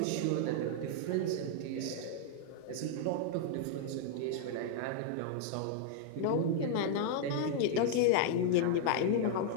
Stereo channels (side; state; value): both; different; correlation -0.01